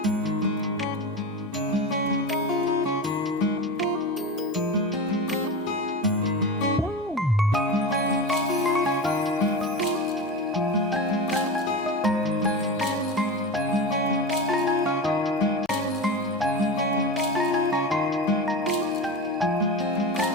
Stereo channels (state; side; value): normal; both; correlation 0.25